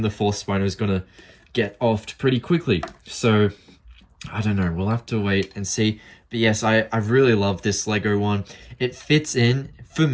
4th Spino is going to get offed pretty quickly. So, I don't know. We'll have to wait and see. But yes, I really love this Lego one. It fits in. For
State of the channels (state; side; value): identical; both; correlation 1.00